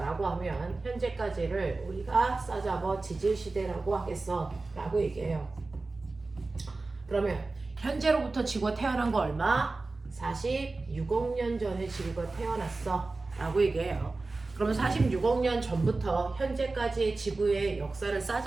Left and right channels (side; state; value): left; quieter; 3.5 dB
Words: 라고 하면 현재까지를 우리가 싸잡아 지질시대라고 하겠어 라고 얘기해요. 그러면 현재로부터 지구가 태어난 거 얼마? 46억 년 전에 지구가 태어났어 라고 얘기해요. 그러면 46억 년 전부터 현재까지의 지구의 역사를